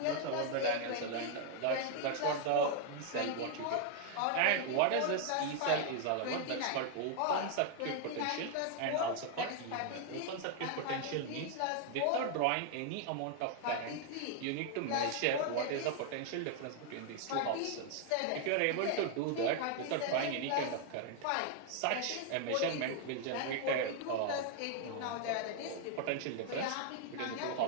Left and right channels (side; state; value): both; different; correlation 0.00